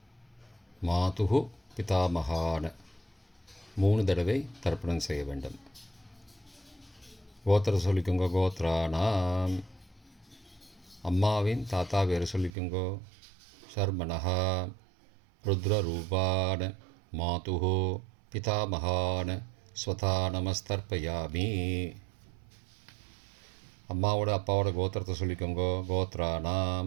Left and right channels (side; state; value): left; drops out; at 12.5 s